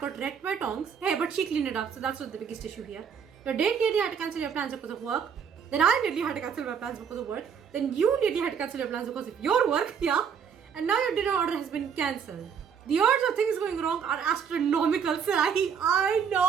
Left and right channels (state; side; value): quieter; left; 7.2 dB